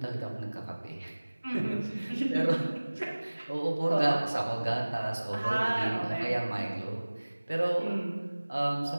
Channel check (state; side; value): inverted; both; correlation -1.00